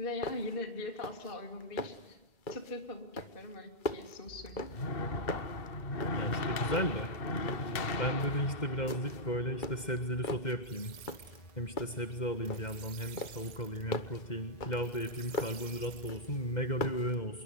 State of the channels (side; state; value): right; late; 2.1 ms